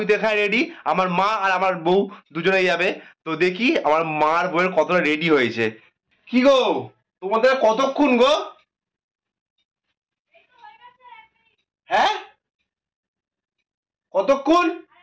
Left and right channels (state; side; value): identical; both; correlation 1.00